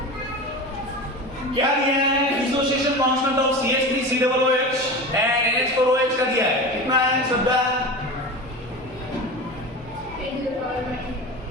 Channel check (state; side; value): normal; both; correlation 0.29